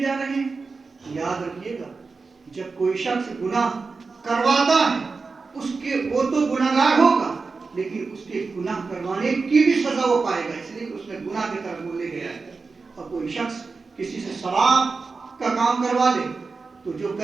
جا رہے ہیں۔ یاد رکھیے گا جب کوئی شخص گناہ کرواتا ہے وہ تو گناہگار ہوگا، لیکن اس کے گناہ کروانے کی بھی سزا وہ پائے گا، اس لیے کہ اس نے گناہ کی طرف وہ لے گیا ہے۔ اور کوئی شخص کسی سے ثواب کا کام کروا لے تو جو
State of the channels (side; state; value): left; quieter; 4.3 dB